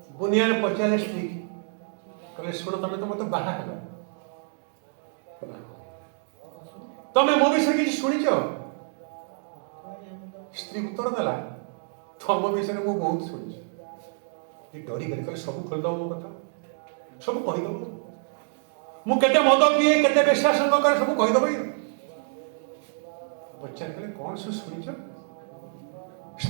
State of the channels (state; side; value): silent; left; 58 dB below the other